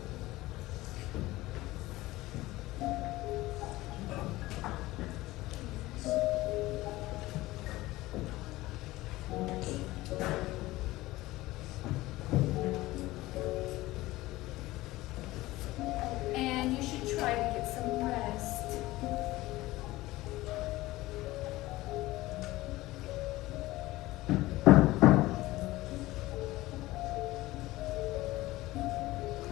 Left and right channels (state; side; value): quieter; right; 18.3 dB